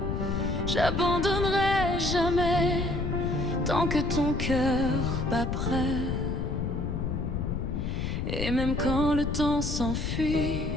J'abandonnerai jamais tant que ton cœur bat prêt. Et même quand le temps s'enfuit,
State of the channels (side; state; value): left; noise; rumble, 1 dB below the sound